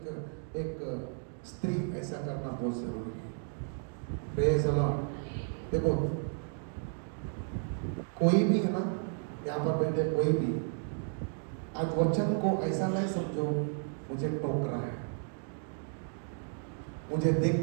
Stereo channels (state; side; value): silent; left; 56 dB below the other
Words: एक स्त्री ऐसा करना बहुत जरूरी है। Praise the Lord. देखो कोई भी है ना, यहाँ पर बैठे कोई भी, आज वचन को ऐसा नहीं समझो मुझे टोक रहा है, मुझे